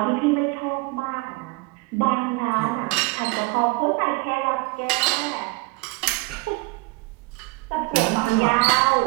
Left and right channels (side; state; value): left; quieter; 25.0 dB